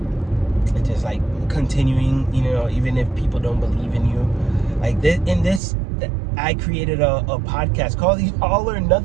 and just like continuing, even if people don't believe in you. Like this, I created a podcast called the All or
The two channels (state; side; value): drops out; left; at 5.6 s